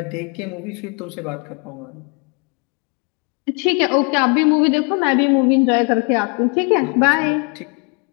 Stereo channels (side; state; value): right; quieter; 35.2 dB